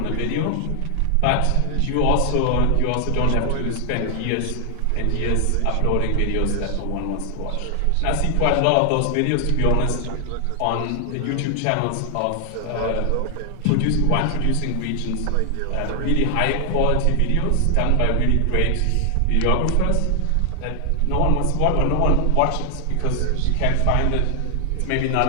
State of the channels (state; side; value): different; both; correlation 0.00